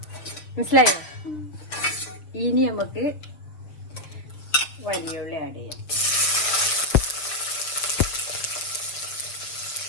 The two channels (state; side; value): late; right; 6.6 ms